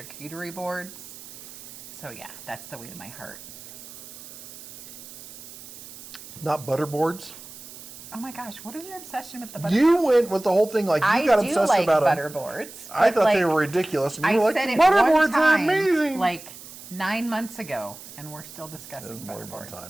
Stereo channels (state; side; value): noise; right; hiss, 16 dB below the sound